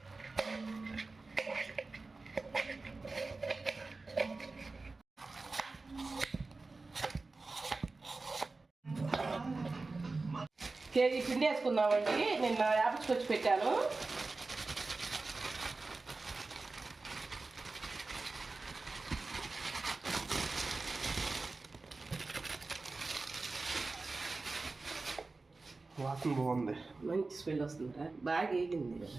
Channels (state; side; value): quieter; left; 3.6 dB